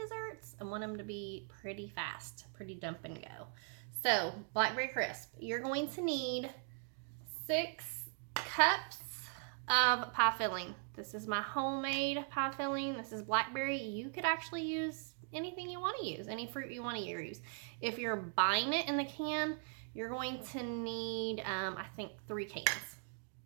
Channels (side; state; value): left; silent; 51 dB below the other